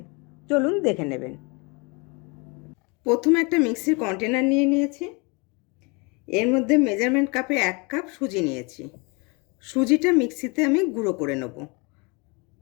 চলুন দেখে নেবেন। প্রথমে একটা মিক্সির কন্টেনার নিয়ে নিয়েছি। এর মধ্যে মেজারমেন্ট কাপে 1 কাপ সুজি নিয়েছি। সুজিটা মিক্সিতে আমি গুঁড়ো করে নেব।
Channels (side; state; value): right; quieter; 29.5 dB